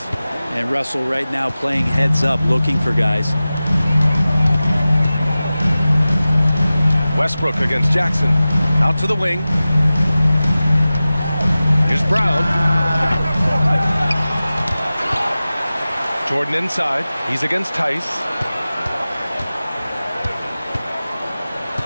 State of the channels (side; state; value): both; inverted; correlation -0.96